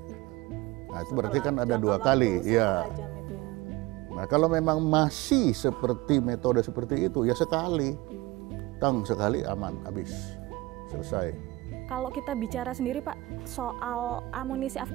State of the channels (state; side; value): quieter; left; 20.1 dB